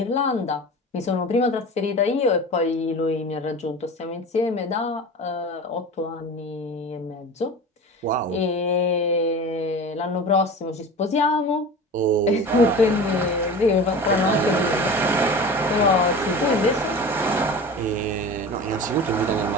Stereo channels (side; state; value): both; normal; correlation 0.34